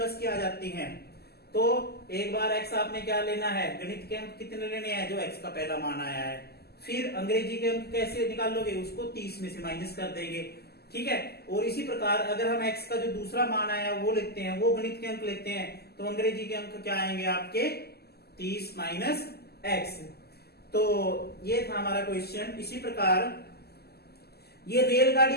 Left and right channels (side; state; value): right; late; 0.46 ms